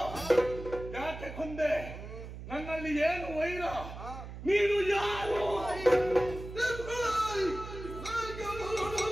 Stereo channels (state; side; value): noise; right; hum, 11 dB below the sound